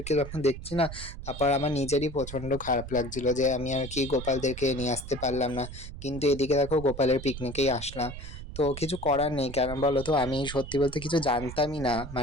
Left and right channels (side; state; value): right; noise; rumble, 11 dB below the sound